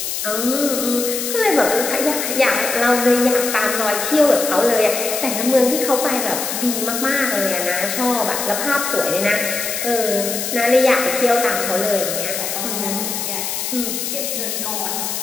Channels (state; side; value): noise; left; hiss, 3 dB below the sound